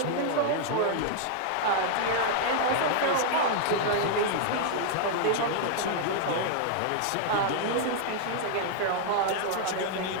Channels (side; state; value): both; different; correlation -0.01